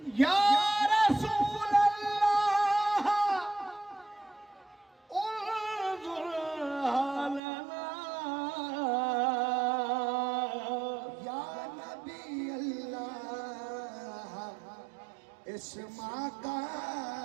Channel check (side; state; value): left; drops out; at 7.4 s